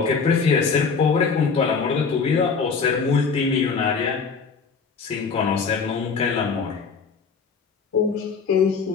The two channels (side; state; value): right; quieter; 5.2 dB